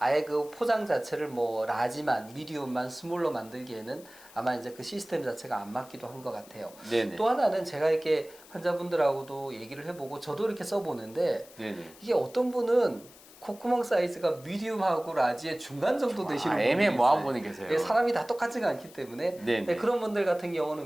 그 포장 자체를 뭐 라지만, 미디움만, 스몰로 만들기에는 아마 이제 그 시스템 자체가 안 맞기도 한 것 같아요. 네네. 또 하나는 제가 이렇게 환자분들하고도 얘기를 해보고 저도 이렇게 써보는데 네네. 이게 어떤 분은 콧구멍 사이즈가 미디움하고 라지의 중간 정도 되시는 분이 애매모호한 있어요. 분이 계세요. 예, 사람이 다 똑같지가 않기 때문에 네네. 그런 분들 같은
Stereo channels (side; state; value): left; noise; hiss, 22 dB below the sound